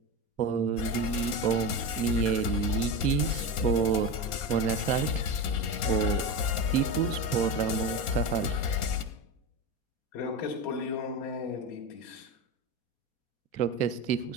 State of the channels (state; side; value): late; right; 4.2 ms